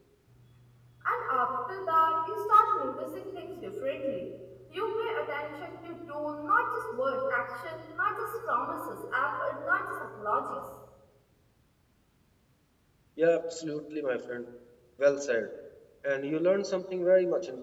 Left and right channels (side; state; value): both; identical; correlation 1.00